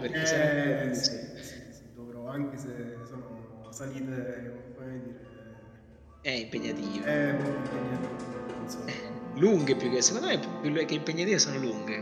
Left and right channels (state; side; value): identical; both; correlation 1.00